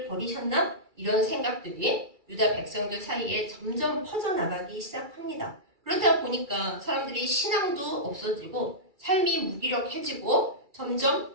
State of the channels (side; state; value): left; late; 2.3 ms